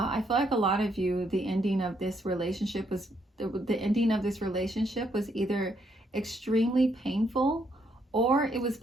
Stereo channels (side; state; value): both; normal; correlation 0.73